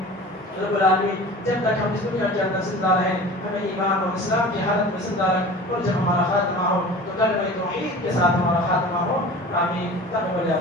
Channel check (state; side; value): normal; both; correlation 0.39